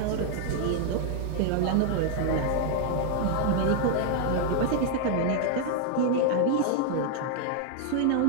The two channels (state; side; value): different; both; correlation 0.00